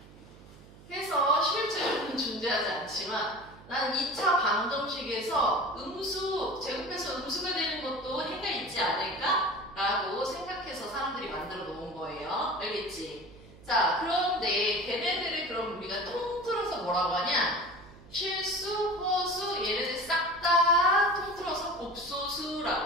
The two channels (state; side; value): noise; right; hum, 21 dB below the sound